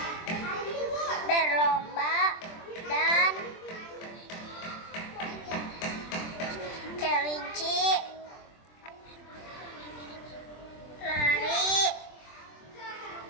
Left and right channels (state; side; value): late; right; 23 ms